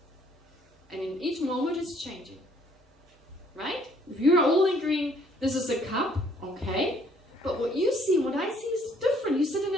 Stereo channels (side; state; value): both; normal; correlation 0.63